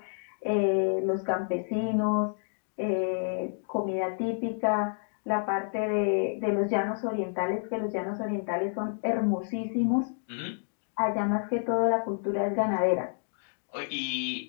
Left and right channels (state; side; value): silent; right; digital silence